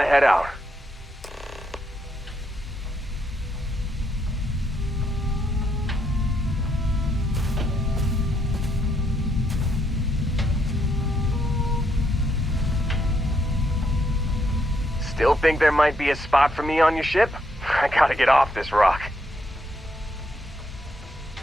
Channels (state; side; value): normal; both; correlation 0.76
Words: head out. Still think there might be a spot for me on your ship? I gotta get off this rock.